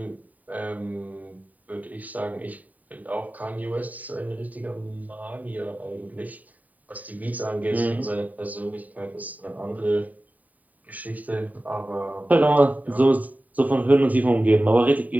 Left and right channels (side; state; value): left; late; 0.075 ms